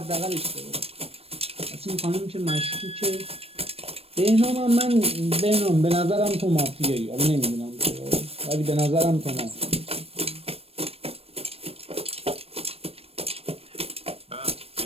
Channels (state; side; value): late; left; 0.28 ms